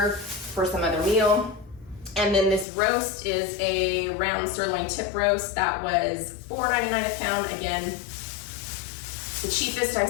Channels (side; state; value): right; drops out; at 2.7 s